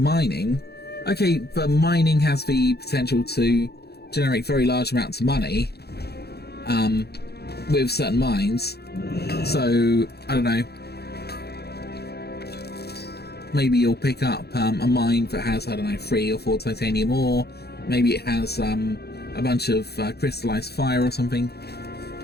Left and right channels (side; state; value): right; late; 0.47 ms